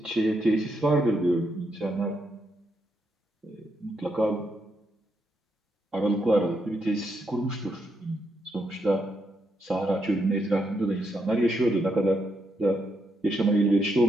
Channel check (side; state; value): both; normal; correlation 0.80